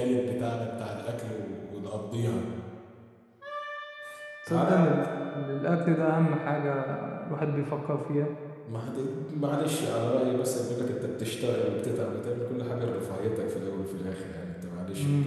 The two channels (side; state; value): both; identical; correlation 1.00